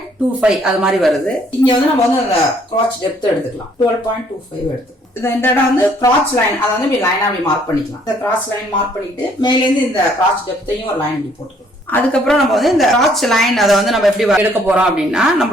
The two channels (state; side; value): normal; both; correlation 0.64